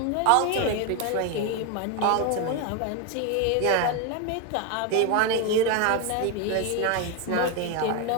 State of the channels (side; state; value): both; different; correlation 0.02